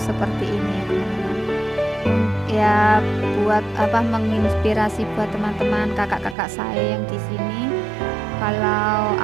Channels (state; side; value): drops out; left; at 6.4 s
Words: seperti ini ya teman-teman. Ya buat menginspirasi buat teman-teman kakak-kakak saya yang di sini, kalau